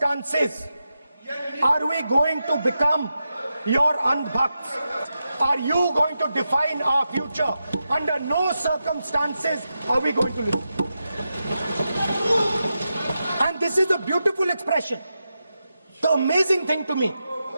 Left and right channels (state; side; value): inverted; both; correlation -0.89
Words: are we going to become your andhbhakts. Are you going to define our future? Under no circumstances are we going to live. And this is a beautiful expression. The amazing thing to me,